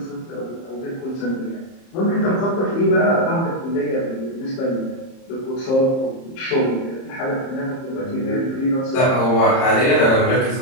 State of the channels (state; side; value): late; right; 30 ms